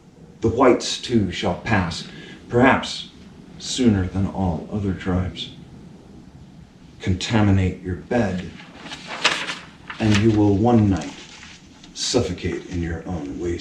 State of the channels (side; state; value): both; identical; correlation 1.00